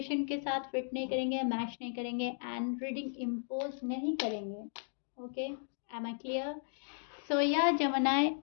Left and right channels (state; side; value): silent; right; digital silence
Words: के साथ फिट नहीं करेंगे, मैच नहीं करेंगे एंड रीडिंग इम्पोज नहीं करेंगे। Okay, am I clear? So या जमनाए